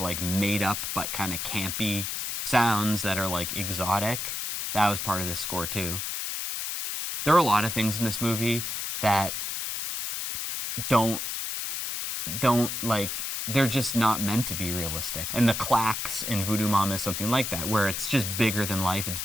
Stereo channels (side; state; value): left; noise; hiss, 3 dB below the sound